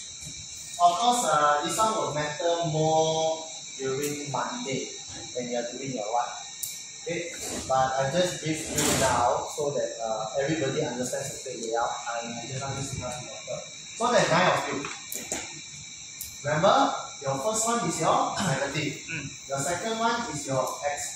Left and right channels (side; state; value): both; identical; correlation 1.00